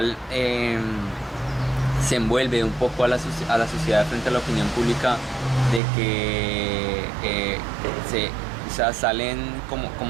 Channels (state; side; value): drops out; left; at 5.8 s